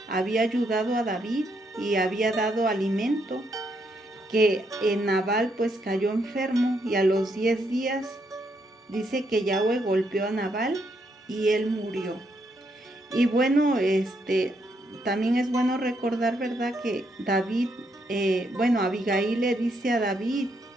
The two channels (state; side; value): normal; both; correlation 0.77